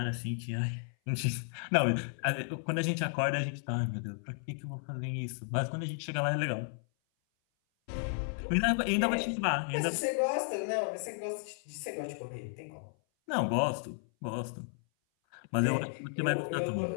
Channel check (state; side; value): silent; right; 55 dB below the other